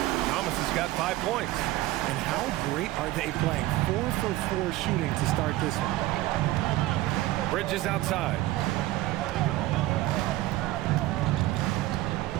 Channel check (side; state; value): left; quieter; 16.7 dB